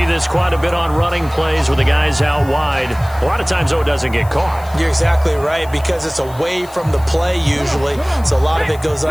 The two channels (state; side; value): noise; left; hiss, 22 dB below the sound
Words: this quite a bit on running plays with the guys out wide. A lot of times, though, it doesn't get caught. You're exactly right, because it's away from the play usually, so a lot of it goes